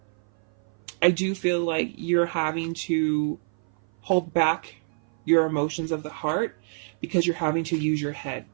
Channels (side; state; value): left; silent; 57 dB below the other